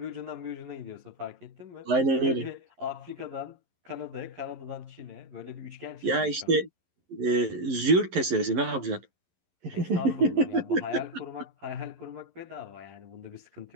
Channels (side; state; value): left; late; 11 ms